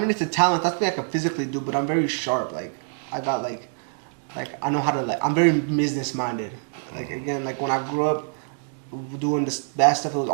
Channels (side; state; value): left; silent; digital silence